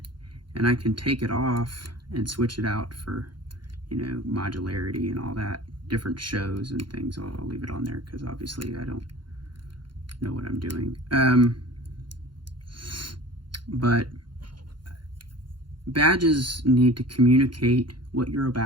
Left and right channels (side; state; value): left; late; 0.72 ms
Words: and I can take it off and switch it out for, you know, modularity and all that, different shows and things. I'll leave it on there because obviously I don't know what I'm doing. But badges need to communicate what you're